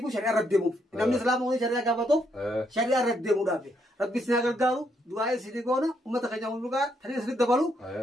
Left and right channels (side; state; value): both; normal; correlation 0.75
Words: بو شريعه ردمو نمن اسلام وري شريعه غافتو شريعه ردمو دافي ربي سنا غرغارو دعاء سيديغونا امه خجاو لغا تري سيد دبلو